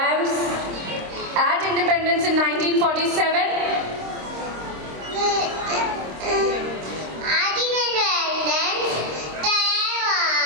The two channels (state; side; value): late; left; 26 ms